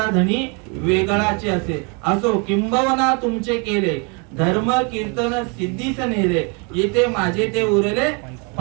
धनी वेगळाचे असे. असो किंबवना तुमचे केले, धर्म कीर्तन सिद्धीस नेले. येथे माझे ते उरले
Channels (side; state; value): left; quieter; 33.6 dB